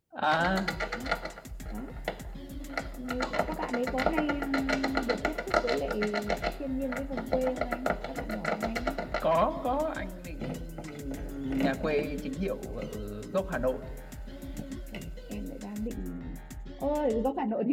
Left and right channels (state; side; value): identical; both; correlation 1.00